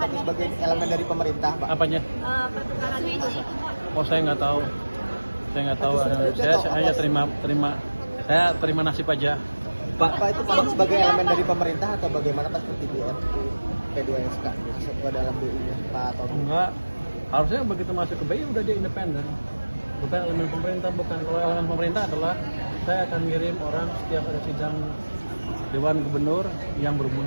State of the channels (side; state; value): both; inverted; correlation -1.00